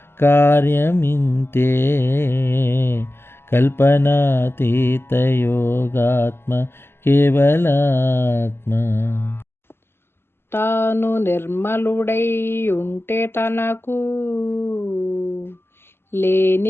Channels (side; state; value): right; late; 0.12 ms